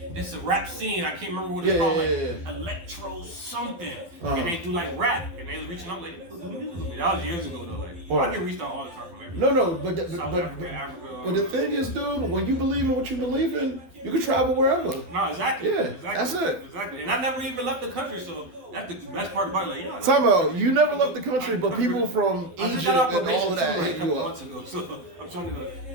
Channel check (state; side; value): late; left; 12 ms